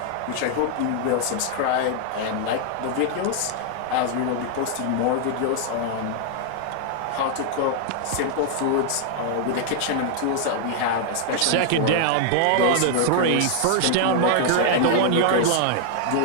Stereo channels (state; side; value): different; both; correlation -0.01